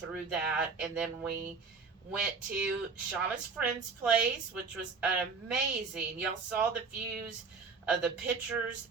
that. And then we went to Shauna's friend's place, which was amazing. Y'all saw the views of the pictures.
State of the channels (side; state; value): left; quieter; 4.8 dB